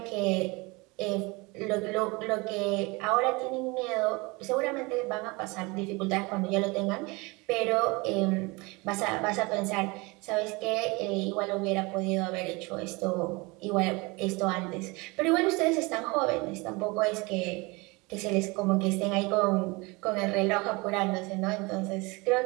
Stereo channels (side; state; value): left; quieter; 25.8 dB